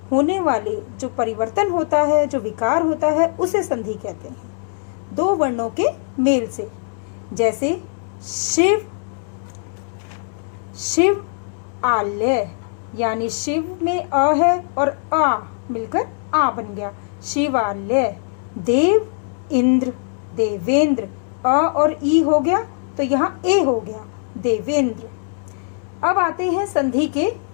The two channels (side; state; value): right; silent; digital silence